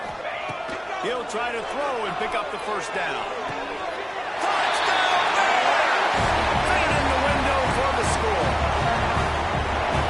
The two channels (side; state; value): both; identical; correlation 1.00